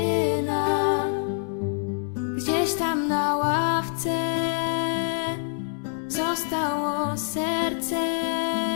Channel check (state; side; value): silent; right; digital silence